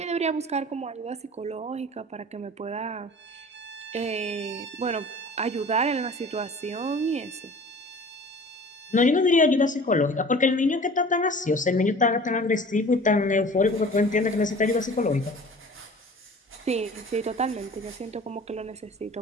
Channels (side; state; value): both; normal; correlation 0.44